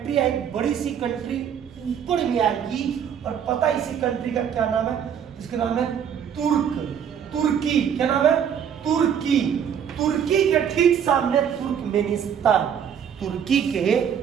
है, एक बड़ी सी कंट्री ऊपर में आएगी, और पता है इसी कंट्री का क्या नाम है? इसका नाम है तुर्की। क्या नाम है? तुर्की। तुर्की के ठीक सामने तुर्कमेनिस्तान, तुर्की के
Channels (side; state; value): left; quieter; 8.3 dB